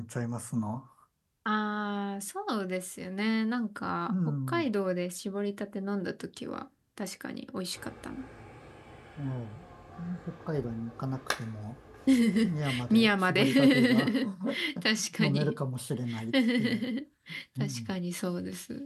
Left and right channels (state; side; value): identical; both; correlation 1.00